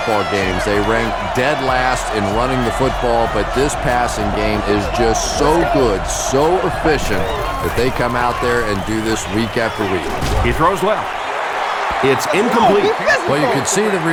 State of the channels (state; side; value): identical; both; correlation 1.00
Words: games. They ranked dead last in running the football, but this passing game is just so good, so efficient, that they come out there and do this week after week. He throws left. It's incomplete. Well, you could see the